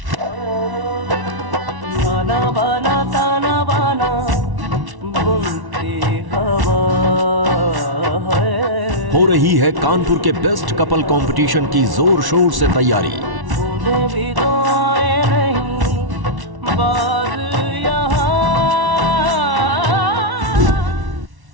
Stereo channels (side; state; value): left; late; 1.1 ms